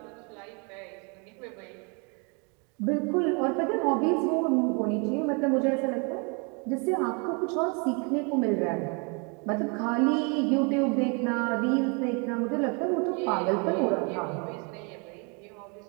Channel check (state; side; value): quieter; left; 33.6 dB